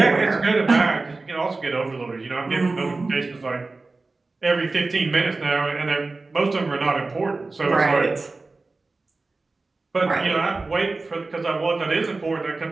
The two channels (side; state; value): left; quieter; 3.5 dB